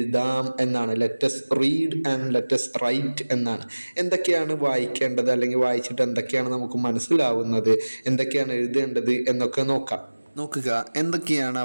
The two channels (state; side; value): inverted; both; correlation -1.00